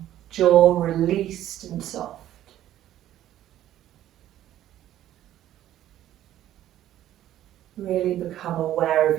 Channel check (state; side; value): quieter; left; 12.6 dB